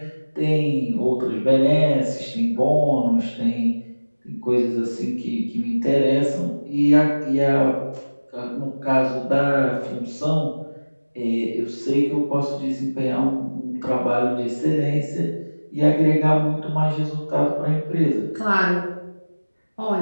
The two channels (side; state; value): both; inverted; correlation -1.00